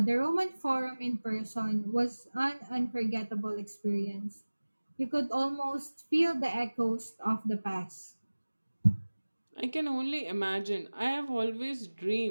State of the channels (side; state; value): both; inverted; correlation -1.00